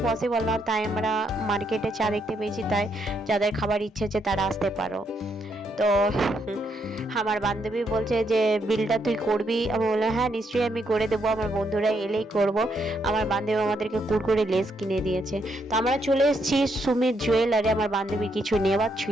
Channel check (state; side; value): normal; both; correlation 0.76